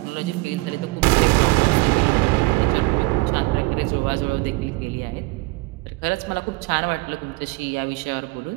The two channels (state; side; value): quieter; left; 23.3 dB